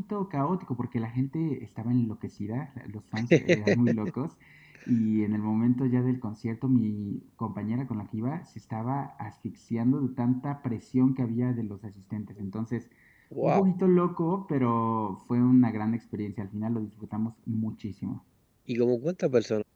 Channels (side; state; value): both; identical; correlation 1.00